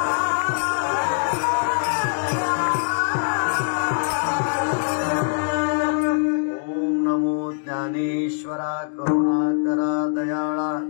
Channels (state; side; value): silent; right; digital silence